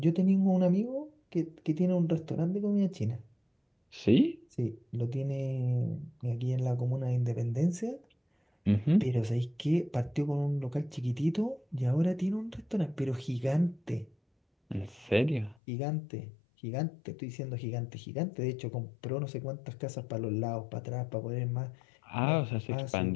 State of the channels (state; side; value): drops out; right; at 15.6 s